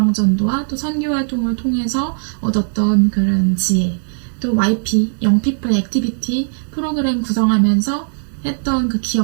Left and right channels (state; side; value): silent; left; digital silence